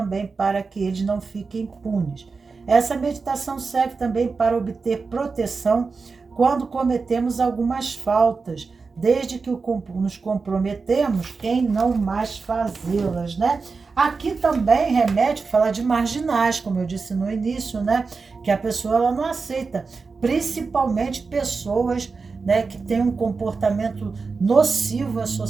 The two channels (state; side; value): quieter; left; 4.5 dB